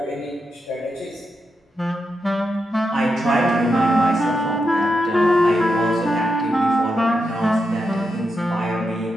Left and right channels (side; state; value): both; normal; correlation 0.86